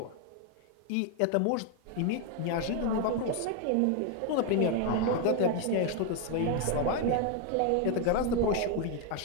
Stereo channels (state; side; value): different; both; correlation 0.01